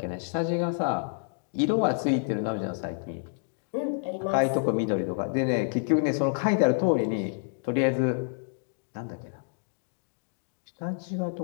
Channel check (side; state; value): right; silent; digital silence